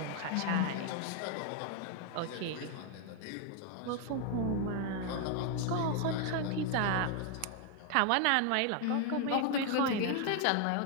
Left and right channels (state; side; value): different; both; correlation 0.00